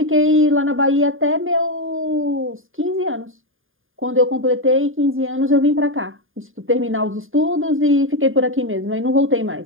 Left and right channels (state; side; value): late; left; 0.59 ms